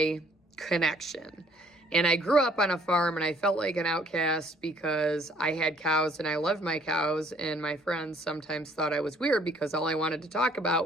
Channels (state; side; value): normal; both; correlation 0.61